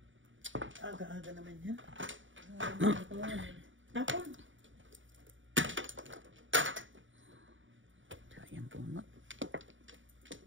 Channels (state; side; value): late; left; 0.56 ms